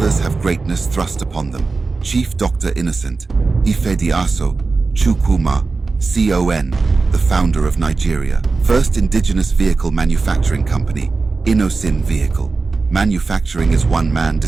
have greatness thrust upon them." Chief Dr. Innocent Ifediaso Chukwuma, CON, the founder of Nigeria, first indigenous vehicle manufacturing company, Innoson Vehicle Manufacturing is one man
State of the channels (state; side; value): quieter; left; 4.0 dB